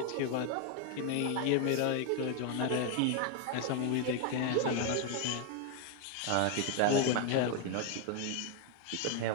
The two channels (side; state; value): both; different; correlation 0.01